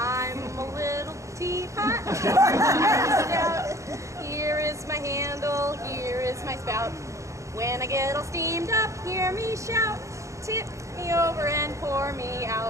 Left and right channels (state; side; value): late; left; 0.15 ms